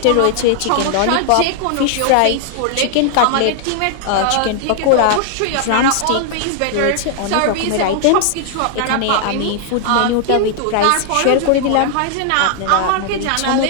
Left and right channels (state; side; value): different; both; correlation 0.00